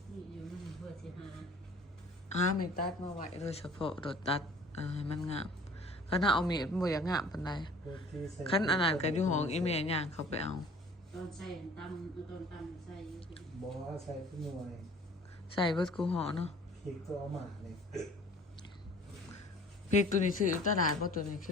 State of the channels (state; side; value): normal; both; correlation 0.49